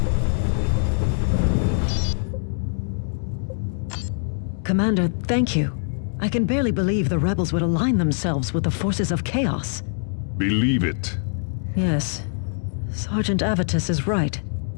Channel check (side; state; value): right; silent; digital silence